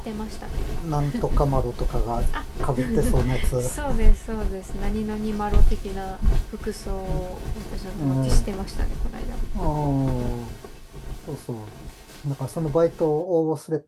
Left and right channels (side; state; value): both; identical; correlation 1.00